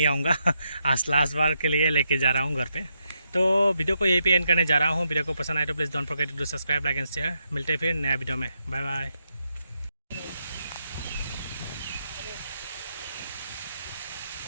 आऊँगा आज लास्ट बार के लिए लेके जा रहा हूँ घर पे। तो वीडियो को यहीं पे एंड करने जा रहा हूँ। वीडियो को पसंद आए तो please don't forget to subscribe, like and share. मिलते हैं फिर नया वीडियो में। Bye bye.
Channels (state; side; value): inverted; both; correlation -0.82